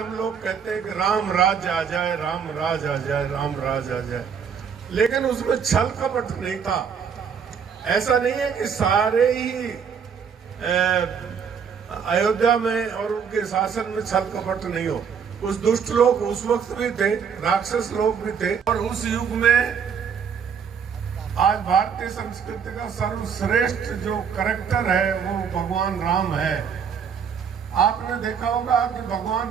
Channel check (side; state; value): left; quieter; 6.9 dB